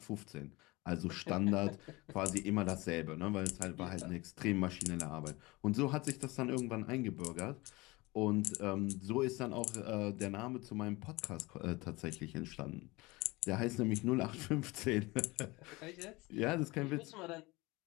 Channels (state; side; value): quieter; right; 22.8 dB